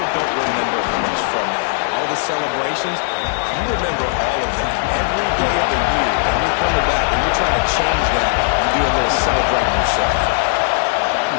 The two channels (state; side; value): silent; right; 68 dB below the other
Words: don't remember how much fun they had. All the celebrations, you remember all of that every day of the year, and you're coming back and you're trying to change that. You do a little celebrating yourself.